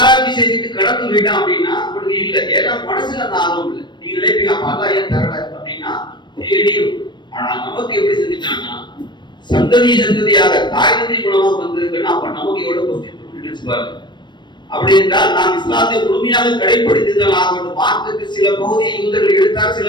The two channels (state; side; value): late; right; 0.22 ms